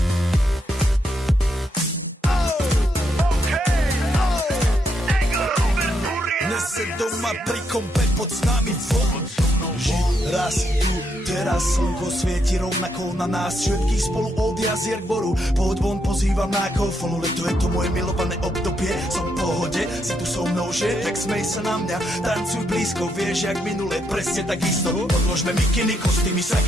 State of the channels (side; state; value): both; normal; correlation 0.78